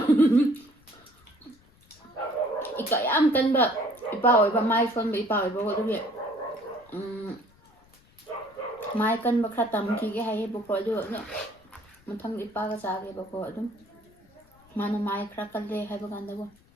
ꯌꯥꯝ ꯀꯟꯕ ꯏꯄꯥ ꯑꯣꯏꯕ ꯃꯥꯏ ꯁꯣꯟꯕ ꯏꯄꯥ ꯑꯣꯏꯕꯀꯣ ꯑꯗꯨꯒꯤ ꯃꯥꯏ ꯀꯟꯕ ꯈꯔ ꯇꯝꯈꯤꯒꯦ ꯍꯥꯏꯌꯦꯕꯀꯣ ꯑꯗꯨ ꯃꯊꯪꯗ ꯏꯄꯥꯒ ꯆꯥꯒꯦꯕꯀꯣ ꯑꯗꯨꯝ ꯃꯥꯅ ꯃꯥꯏ ꯈꯔ ꯀꯜꯂꯦ ꯍꯥꯏꯕ ꯀꯥꯟꯗꯀꯣ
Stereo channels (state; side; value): noise; left; rumble, 29 dB below the sound